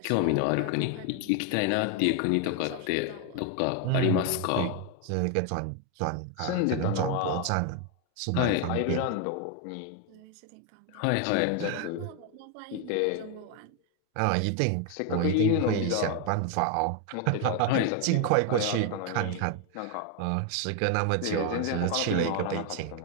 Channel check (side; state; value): both; different; correlation 0.01